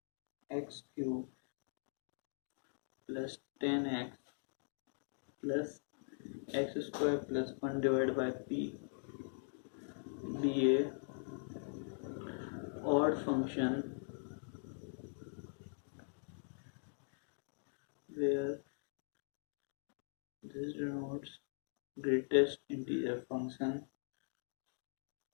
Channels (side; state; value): right; silent; digital silence